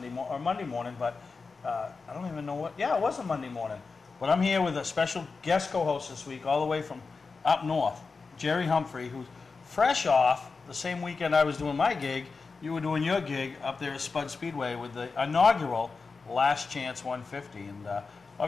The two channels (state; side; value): quieter; right; 4.5 dB